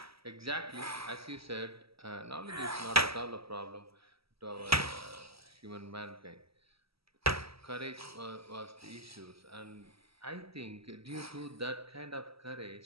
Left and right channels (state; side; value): late; left; 0.76 ms